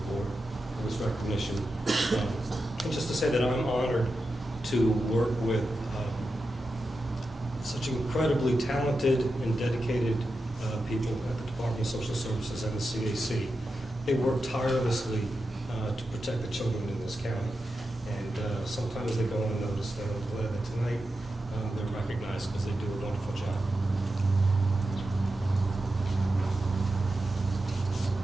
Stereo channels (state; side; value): normal; both; correlation 0.90